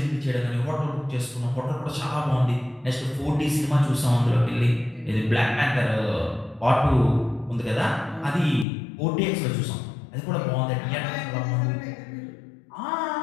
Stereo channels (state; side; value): drops out; right; at 8.7 s